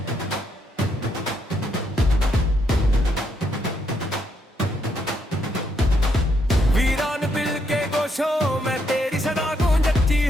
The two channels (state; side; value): normal; both; correlation 0.76